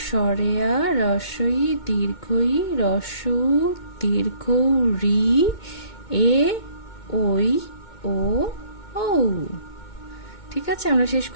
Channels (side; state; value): right; late; 2.2 ms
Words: স্বরেয়া, রস্বই, দীর্ঘই, রস্যু, দীর্ঘ, রি, এ, ওই, ও, ঔ। ঠিক আছে, আমরা শেষ